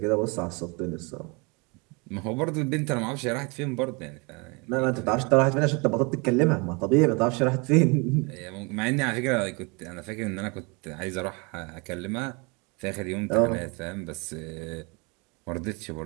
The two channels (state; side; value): quieter; left; 29.9 dB